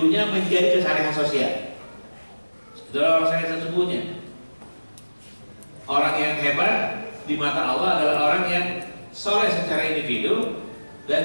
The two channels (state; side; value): inverted; both; correlation -1.00